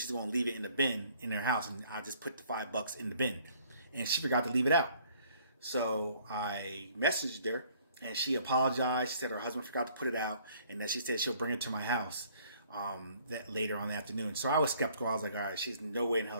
going to leave it in the bin in her house, and I just put the $5 in the bin, and she forgot to leave it out. So I messaged her, and she apologized. She said her husband forgot to put it out, and that she said she'll bring it to my house that later on the afternoon. So I was skeptical. I was like, all right, she's no way in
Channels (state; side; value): inverted; both; correlation -0.59